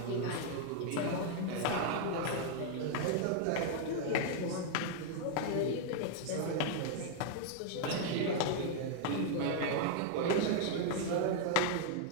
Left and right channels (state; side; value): different; both; correlation 0.00